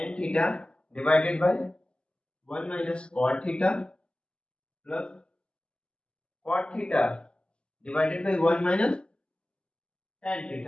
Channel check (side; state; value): right; late; 0.053 ms